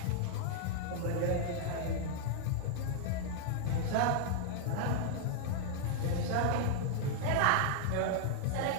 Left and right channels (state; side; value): different; both; correlation -0.01